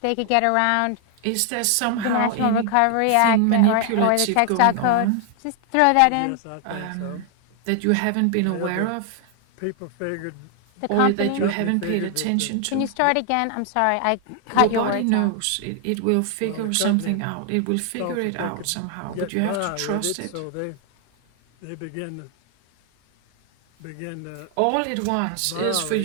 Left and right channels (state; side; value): different; both; correlation 0.00